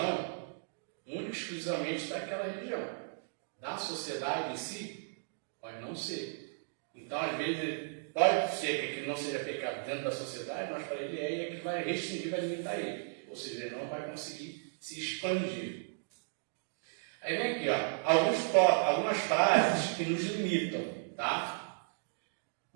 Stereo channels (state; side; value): silent; left; digital silence